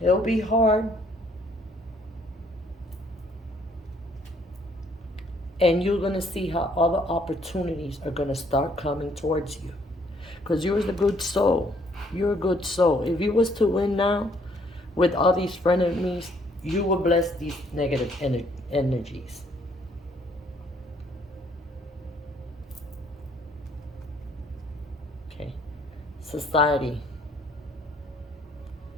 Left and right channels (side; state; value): both; normal; correlation 0.65